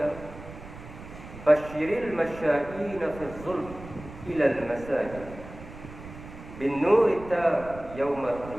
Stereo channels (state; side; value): noise; right; rumble, 15 dB below the sound